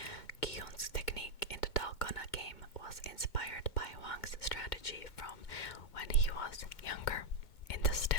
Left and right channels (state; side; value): late; right; 2.1 ms